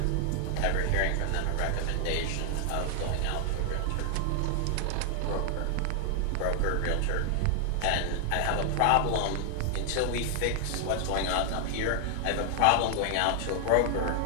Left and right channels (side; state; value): both; different; correlation 0.00